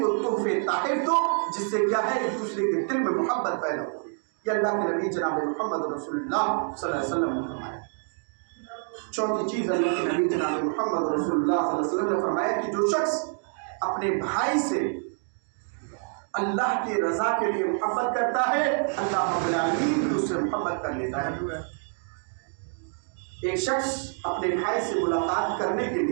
کو تحفے تحائف دو جس سے کیا ہے ایک دوسرے کے دل میں محبت پیدا ہو. یہ اللہ کے نبی جناب محمد رسول اللہ صلی اللہ علیہ وسلم نے فرمایا. چوتھی چیز اللہ کے نبی جناب محمد رسول اللہ صلی اللہ علیہ وسلم نے فرمایا کہ جو شخص اپنے بھائی سے اللہ کی رضا کے لیے محبت کرتا ہے, اللہ رب العالمین بھی اس سے محبت کر لیتا ہے. ایک شخص اپنے بھائی سے ملاقات کرنے کے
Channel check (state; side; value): silent; left; 58 dB below the other